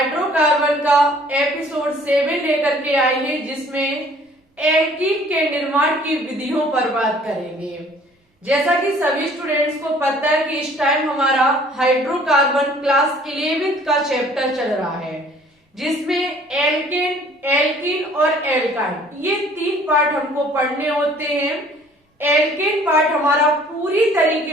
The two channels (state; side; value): normal; both; correlation 0.55